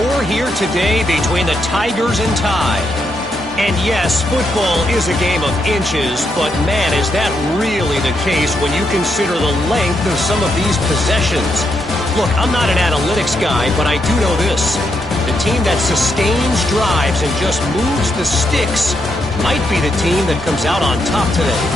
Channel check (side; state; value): both; normal; correlation 0.80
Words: here today between the Tigers and Tide. And yes, football is a game of inches, but man, is that really the case when you consider the length of some of these possessions. Look, I'm not an analytics guy, but I do know this. The team that sustains drives and just moves the sticks might be the team that comes out on top today.